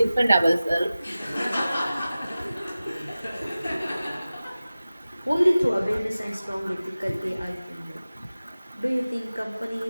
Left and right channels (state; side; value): inverted; both; correlation -0.96